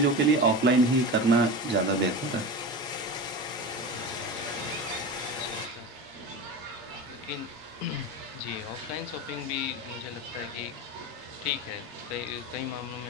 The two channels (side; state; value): both; normal; correlation 0.26